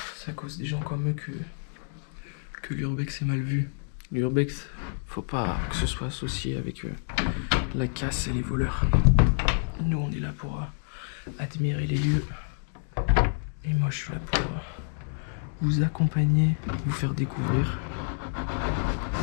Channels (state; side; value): silent; right; digital silence